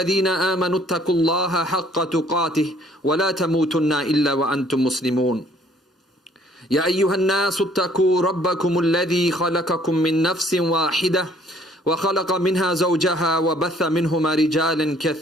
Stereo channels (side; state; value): both; normal; correlation 0.60